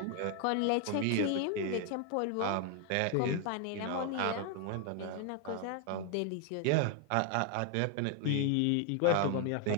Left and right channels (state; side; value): different; both; correlation 0.01